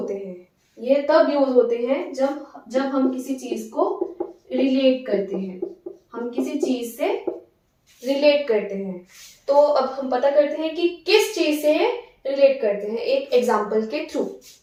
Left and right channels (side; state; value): both; identical; correlation 1.00